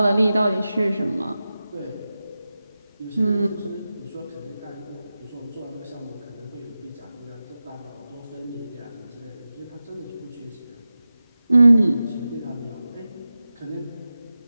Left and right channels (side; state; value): both; inverted; correlation -0.94